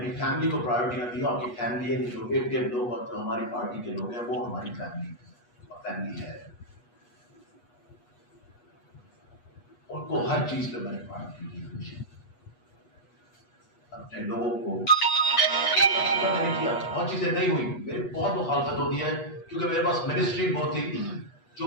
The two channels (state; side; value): late; right; 8.3 ms